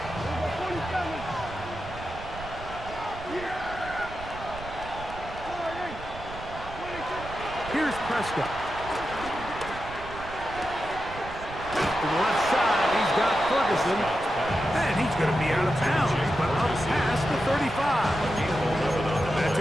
Here's Prescott. To the left side, he's got Ferguson. And he's going to be out of bounds, but up past the 35. That's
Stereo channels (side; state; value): right; noise; rumble, 13 dB below the sound